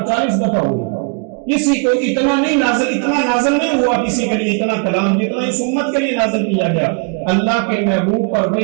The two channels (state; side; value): quieter; left; 37.0 dB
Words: 40 دفعہ ہوئی۔ کسی کو اتنا نازل نہیں ہوا کسی کے لیے اتنا کلام جتنا اس امت کے لیے نازل کیا گیا۔ اللہ کے محبوب پر